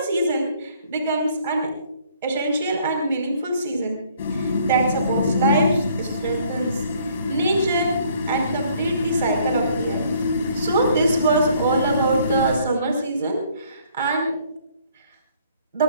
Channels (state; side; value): inverted; both; correlation -0.62